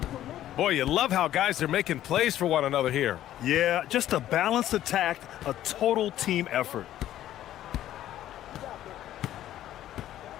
Boy, you love how guys are making plays for one another here. Yeah, just a balanced attack, a total team effort.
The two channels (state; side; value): quieter; right; 12.7 dB